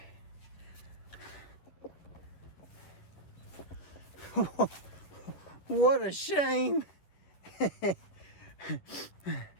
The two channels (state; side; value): late; right; 10 ms